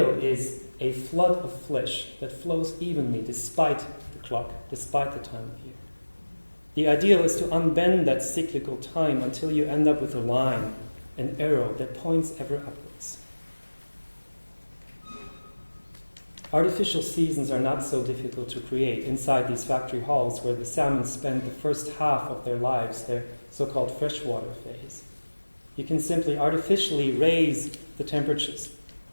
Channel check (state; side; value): inverted; both; correlation -1.00